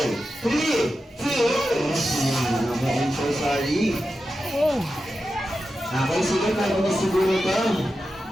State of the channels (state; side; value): normal; both; correlation 0.91